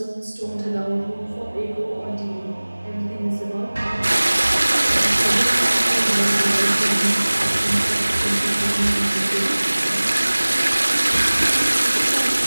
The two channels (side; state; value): both; inverted; correlation -1.00